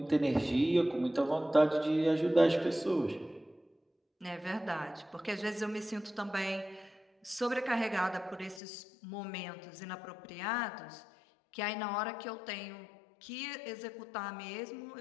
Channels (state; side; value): drops out; right; at 8.6 s